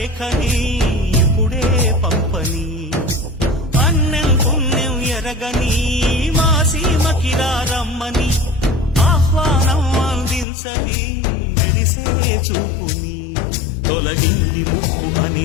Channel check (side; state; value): right; drops out; at 10.5 s